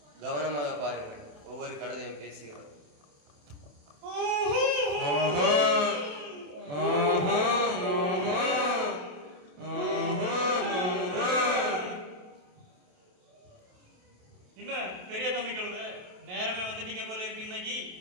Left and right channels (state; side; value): late; left; 27 ms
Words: கவனமாக பாருங்கள். ஒவ்வொரு கழுதையும் பேசுகிறது. பெரிய தம்பி கழுதை, நேரமே வந்துட்டீங்க போல இருக்கு இன்னைக்கு.